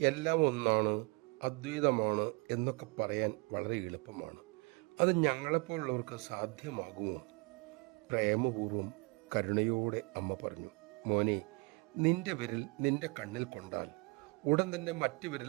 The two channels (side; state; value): left; quieter; 29.3 dB